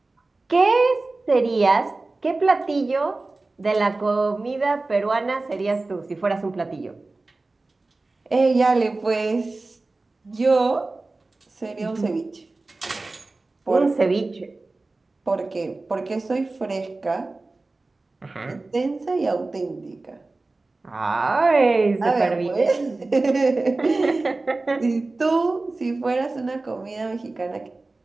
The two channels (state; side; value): quieter; left; 3.3 dB